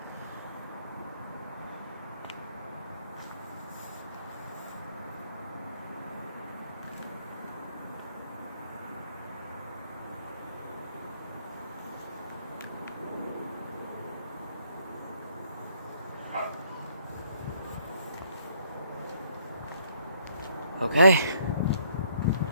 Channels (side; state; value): both; inverted; correlation -0.66